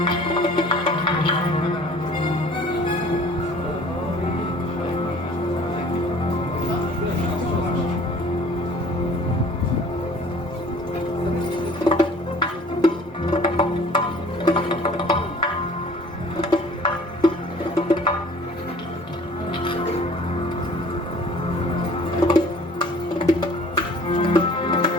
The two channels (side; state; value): both; normal; correlation 0.50